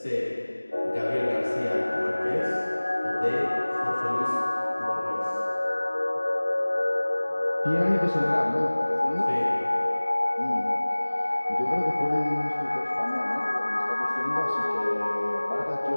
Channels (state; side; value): inverted; both; correlation -1.00